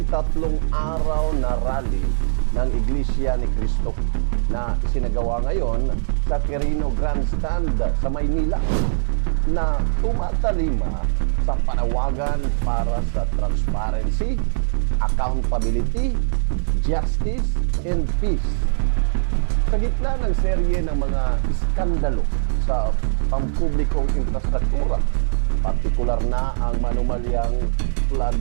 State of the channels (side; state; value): left; silent; digital silence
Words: 3 araw na rally ng Iglesia ni Cristo na isinagawa ngayon sa Quirino Grandstand sa Maynila, na tumatalima sa panawagan para sa transparency, accountability, justice, and peace. Sa gitna ng serye ng mga iskandalo sa pampublikong infrastruktura, partikular na ang manumalyang flood